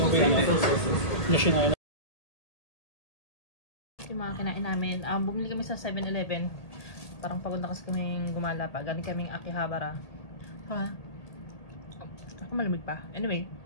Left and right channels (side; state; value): right; late; 1.8 ms